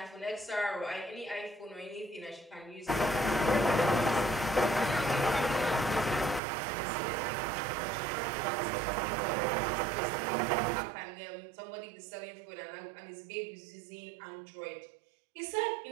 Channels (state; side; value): drops out; left; at 6.4 s